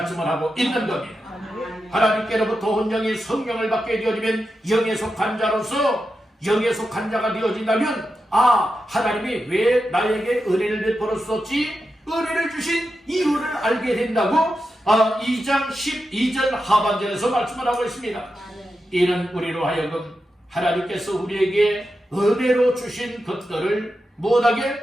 하고 있는 겁니다. 하나님께로부터 온 영이 성령을 받게 되어지면 영에 속한 자로서 영에 속한 자가 되어진다면 하나님이 왜 나에게 은혜를 베풀었었지? 은혜를 주신 이유를 알게 된다고 2장 12절 하반절에서 말씀을 하고 있습니다. 이는 우리로 하여금 하나님께서 우리에게 은혜로 주신 것들을 못하게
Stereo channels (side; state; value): both; normal; correlation 0.89